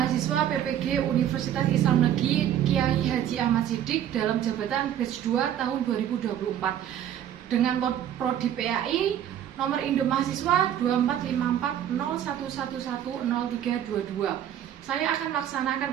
PPG Universitas Islam Negeri Kiai Haji Ahmad Siddiq dalam jabatan batch 2 tahun 2024 dengan prodi PAI nomor induk mahasiswa 245401110322. Saya akan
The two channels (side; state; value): left; quieter; 10.6 dB